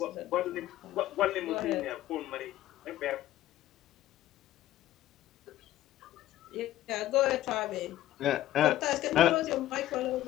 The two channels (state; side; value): quieter; right; 14.0 dB